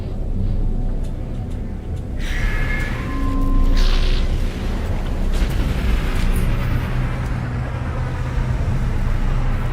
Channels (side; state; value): both; identical; correlation 1.00